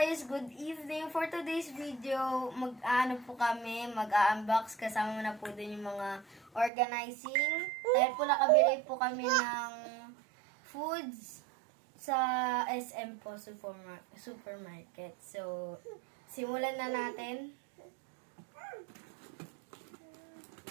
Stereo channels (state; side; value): drops out; left; at 6.7 s